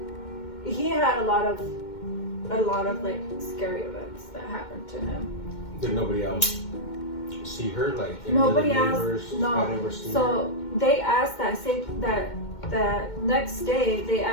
like scary events that happened to him. Did nobody else see her? Like nobody else. No. Had ever seen so her? they asked that next day they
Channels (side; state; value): right; late; 2.2 ms